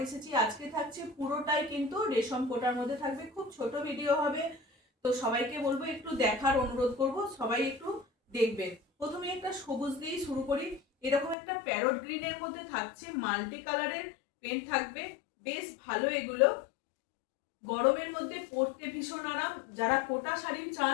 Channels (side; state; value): right; drops out; at 11.4 s